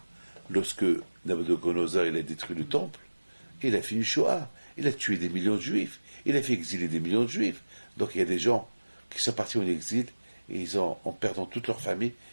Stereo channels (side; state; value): both; inverted; correlation -1.00